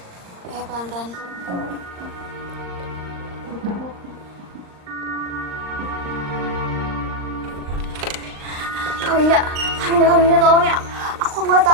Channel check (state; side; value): late; left; 39 ms